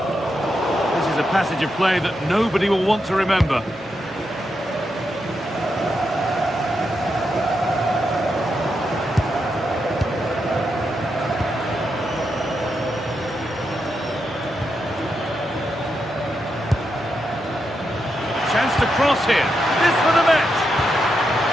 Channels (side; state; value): both; normal; correlation 0.84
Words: This is a passage of play that nobody will want to remember. Chance to cross here. This for the match.